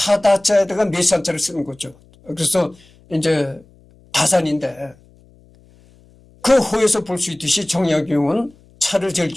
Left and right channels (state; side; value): noise; left; hum, 29 dB below the sound